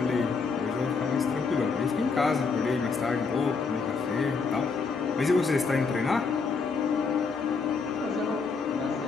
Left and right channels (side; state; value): right; quieter; 4.8 dB